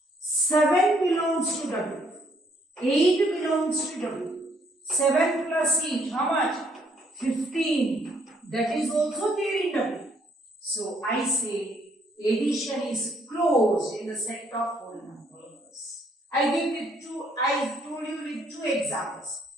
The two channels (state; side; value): normal; both; correlation 0.68